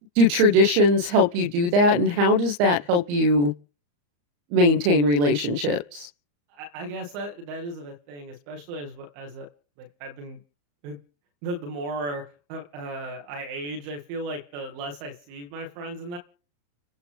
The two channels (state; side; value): late; left; 34 ms